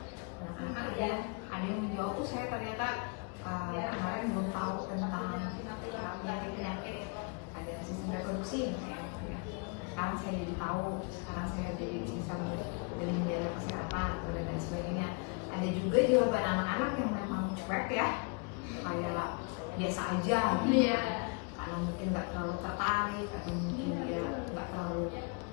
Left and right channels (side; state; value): right; quieter; 33.8 dB